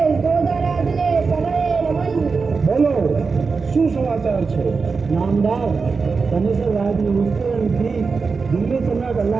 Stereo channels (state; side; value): quieter; left; 4.7 dB